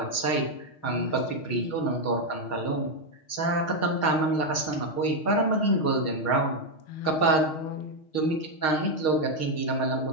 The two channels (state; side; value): late; right; 6.4 ms